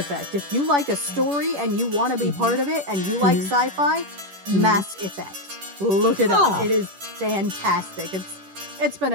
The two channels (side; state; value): left; late; 10 ms